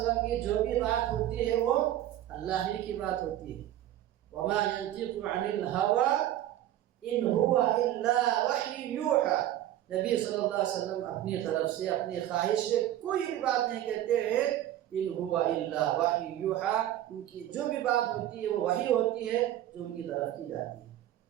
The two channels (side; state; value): left; quieter; 12.7 dB